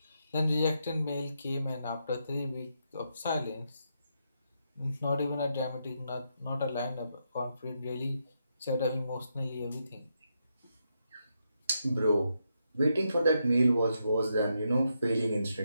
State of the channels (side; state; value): both; inverted; correlation -0.81